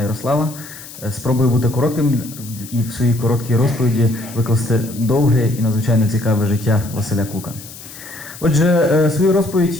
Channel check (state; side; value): noise; left; hiss, 16 dB below the sound